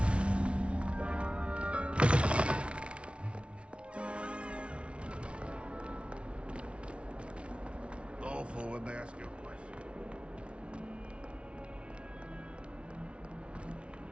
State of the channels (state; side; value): late; left; 0.060 ms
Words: Awful when they ask you a question.